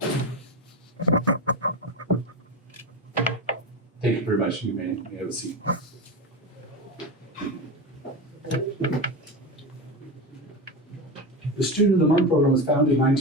Thank you very much. You may have a seat. The Student of the Month program was founded in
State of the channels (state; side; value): normal; both; correlation 0.20